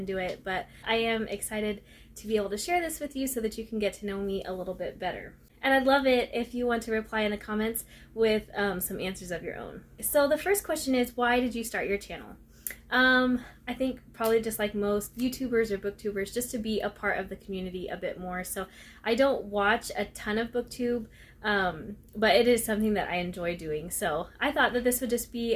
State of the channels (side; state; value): both; identical; correlation 1.00